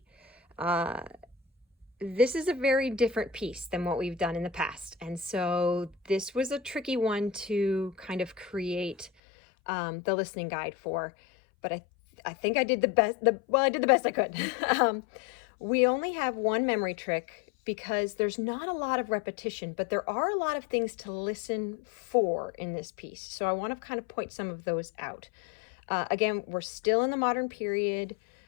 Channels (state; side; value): drops out; right; at 9.1 s